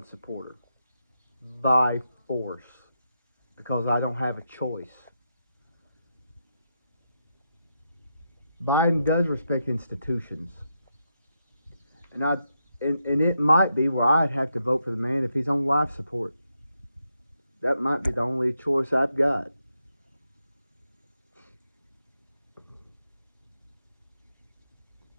supporter by force because I don't have a choice. Biden does respect institutions, and it might be where I'd have to vote for the man if he's on life support. That might be the only choice I've got.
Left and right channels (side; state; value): both; inverted; correlation -0.83